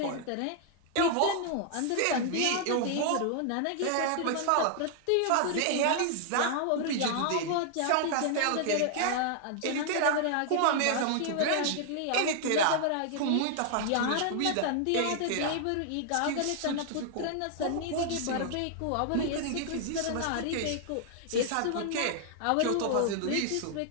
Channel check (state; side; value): different; both; correlation 0.00